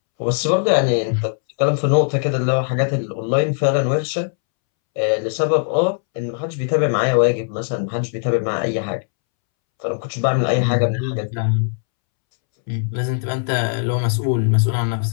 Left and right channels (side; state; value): right; silent; 66 dB below the other